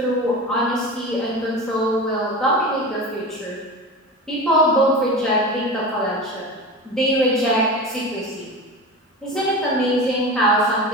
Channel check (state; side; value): normal; both; correlation 0.29